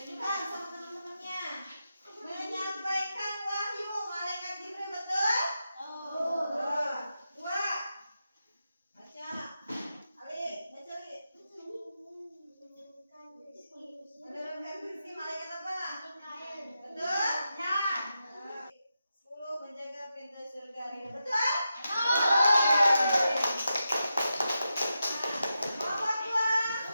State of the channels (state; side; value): inverted; both; correlation -0.88